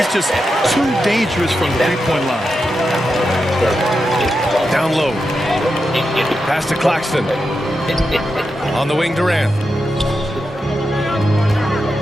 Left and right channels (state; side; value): normal; both; correlation 0.88